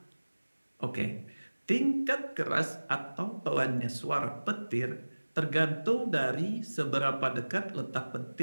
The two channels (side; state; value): both; inverted; correlation -1.00